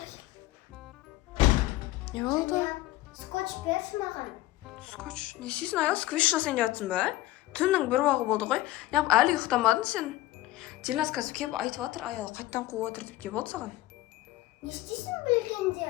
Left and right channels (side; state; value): right; quieter; 17.1 dB